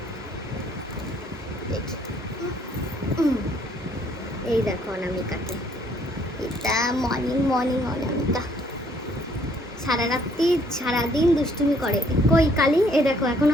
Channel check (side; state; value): both; normal; correlation 0.64